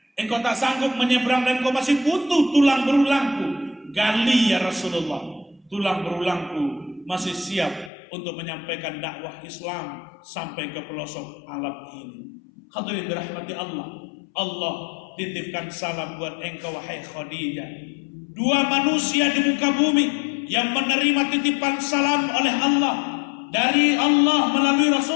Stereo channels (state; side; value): drops out; right; at 7.9 s